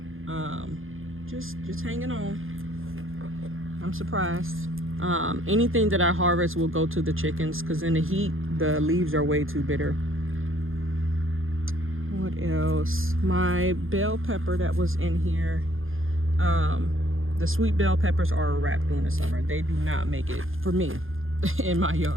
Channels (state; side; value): late; left; 0.60 ms